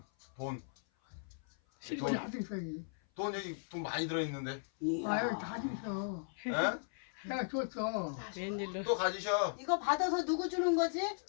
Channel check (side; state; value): right; silent; 53 dB below the other